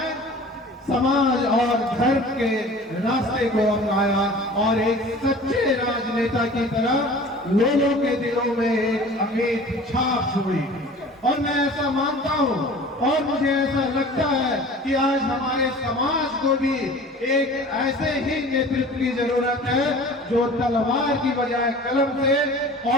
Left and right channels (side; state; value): both; normal; correlation 0.43